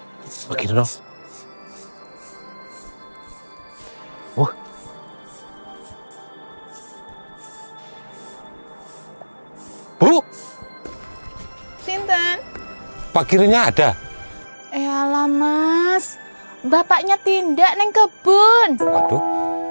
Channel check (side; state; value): both; inverted; correlation -1.00